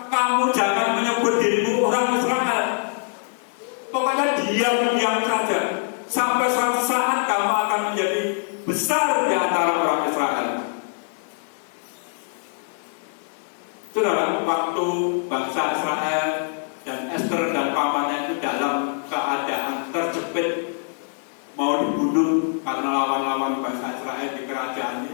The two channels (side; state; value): right; silent; digital silence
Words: kamu jangan menyebut dirimu orang Israel, pokoknya diam-diam saja, sampai suatu saat kamu akan menjadi besar di antara orang Israel. Saudara, waktu bangsa Israel dan Esther dan pamannya itu dalam keadaan terjepit, mau dibunuh karena lawan-lawan bangsa Israel di kerajaan